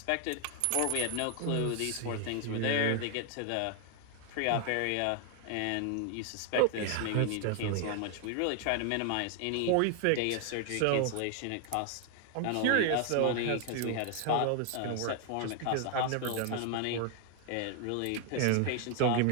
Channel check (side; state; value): both; different; correlation 0.00